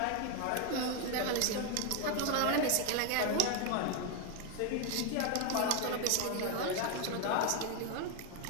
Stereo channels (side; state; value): both; different; correlation 0.01